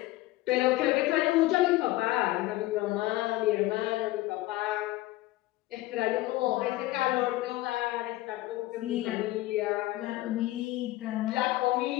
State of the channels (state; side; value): quieter; right; 17.5 dB